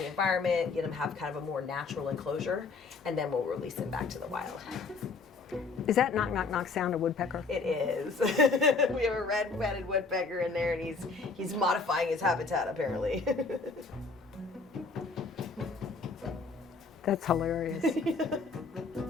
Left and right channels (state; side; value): quieter; right; 4.2 dB